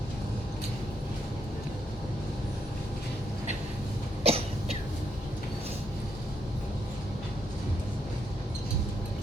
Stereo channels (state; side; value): normal; both; correlation 0.77